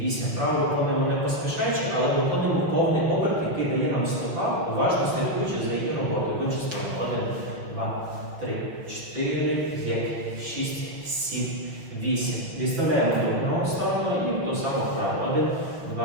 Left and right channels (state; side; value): late; left; 6.1 ms